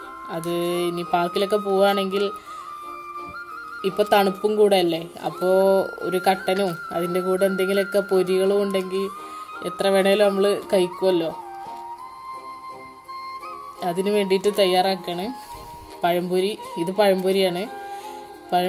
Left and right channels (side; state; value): both; identical; correlation 1.00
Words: അത് ഇനി പാർക്കിലൊക്കെ പോവുകയാണെങ്കിൽ ഇപ്പോൾ തണുപ്പും കൂടെ അല്ലേ, അപ്പോൾ ഒരു കട്ടനും അതിൻ്റെ കൂടെ എന്തെങ്കിലുമൊക്കെ പൊരികളും ഉണ്ടെങ്കിൽ എത്ര വേണേലും നമ്മൾ കഴിക്കുമല്ലോ. അതിന് വേണ്ടിയിട്ട് തയ്യാറാക്കാണ് പഴംപൊരി. ഇത് പഴംപൊരിയാണ്.